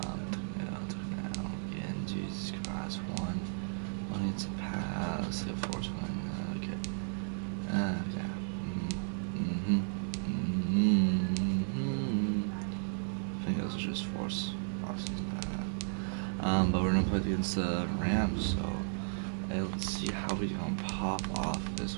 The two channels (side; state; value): left; silent; digital silence